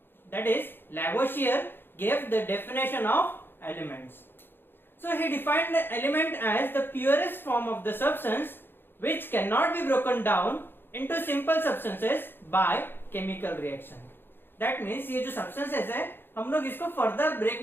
that is Lavoisier, gave the definition of elements. So he defined the element as the purest form of the substance which cannot be broken down into simple substances by chemical reaction. That means ये जो substances है हम लोग इसको further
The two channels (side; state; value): right; late; 0.10 ms